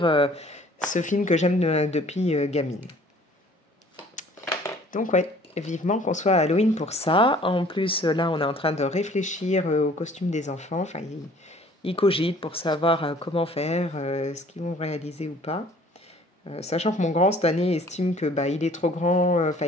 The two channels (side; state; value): both; normal; correlation 0.53